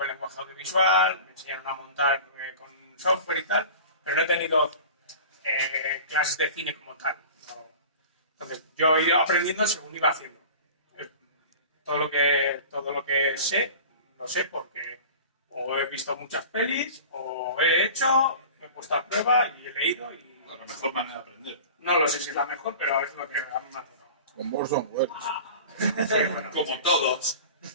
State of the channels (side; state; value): both; inverted; correlation -0.39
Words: el lenguaje audiovisual, me enseñaron a montar con software y tal, pero no he tenido clases de cine como tal. ¿No? Entonces, yo he ido aprendiendo según iba haciendo. Todo lo que sé, lo sé porque o he visto muchas pelis, o he hecho, me he puesto a prueba y he leído. Y La mejor manera de aprender. no lo sé si es la mejor, pero es lo que a mí me ha tocado. Con Orson Welles. Sí, bueno, Como todos.